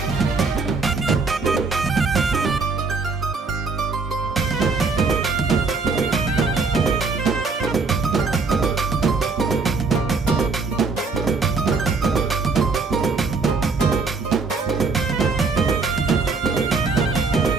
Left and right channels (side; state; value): left; quieter; 4.3 dB